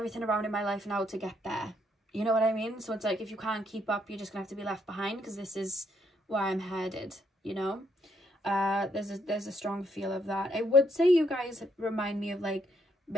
around in my life now to get there. You know what I mean? So it's like, if you can't keep up, you're just gonna have to be left behind, because this is where I'm headed, you know? There's a strong feel of that. I would say you guys remind me of like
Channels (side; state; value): both; normal; correlation 0.73